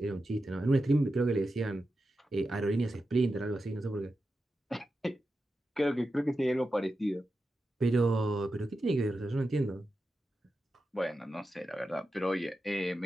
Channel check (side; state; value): both; normal; correlation 0.90